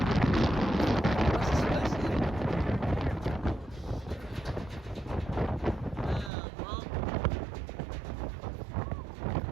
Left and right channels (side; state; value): left; drops out; at 6.3 s